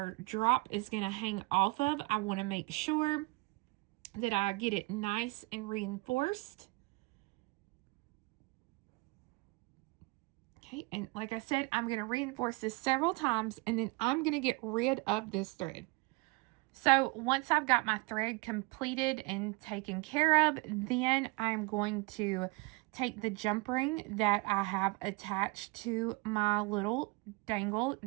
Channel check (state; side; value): quieter; left; 25.6 dB